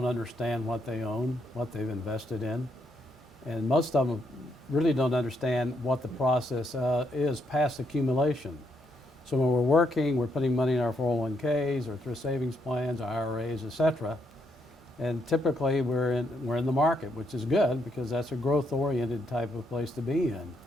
understand what they own, what they've invested in. And most of them really don't understand what the process is past accumulation. So when we're working, we're putting money in our 401ks or thrift savings plans, IRAs, etc. And typically we're in the market, which is good because that's a growth-oriented type of place to be in.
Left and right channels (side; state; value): both; normal; correlation 0.76